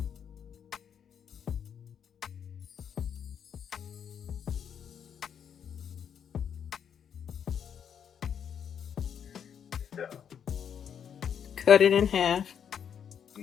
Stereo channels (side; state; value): right; quieter; 8.1 dB